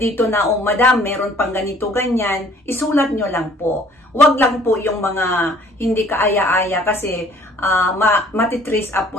na, oh madam, meron pang ganito, ganyan, isulat nyo lang po. Huwag lang po yung mga hindi kaaya-aya kasi matitrace up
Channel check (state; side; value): normal; both; correlation 0.56